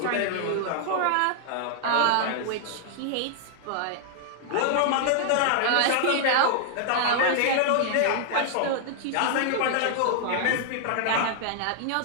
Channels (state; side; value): different; both; correlation -0.01